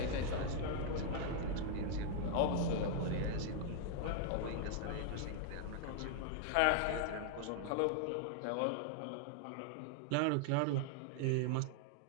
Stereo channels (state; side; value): different; both; correlation 0.00